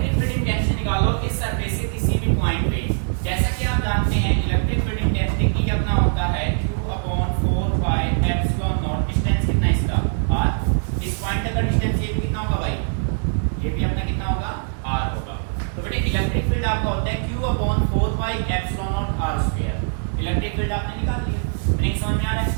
फील्ड इंटेंसिटी निकालो इस सरफेस के किसी भी पॉइंट पे, जैसा कि आप जानते हैं इलेक्ट्रिक फील्ड इंटेंसिटी की अपना होता है q/4πε0, डिस्टेंस कितना है इसका r, इस पॉइंट तक का डिस्टेंस ये भी कितना होगा भाई, ये भी अपना कितना होगा r होगा। तो बेटे इलेक्ट्रिक फील्ड आपका होता है q/4πε0r²। इलेक्ट्रिक फील्ड आपने निकाल लिया, मीनिंग समझ में आ रहा है।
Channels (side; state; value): left; silent; digital silence